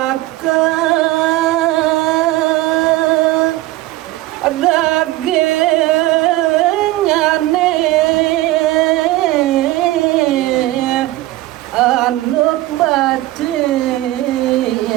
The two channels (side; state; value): left; quieter; 17.1 dB